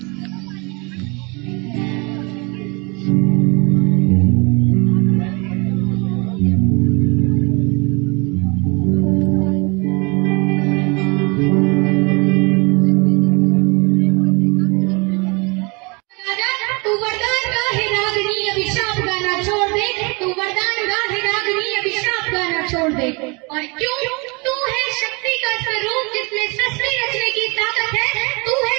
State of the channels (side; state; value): left; quieter; 29.5 dB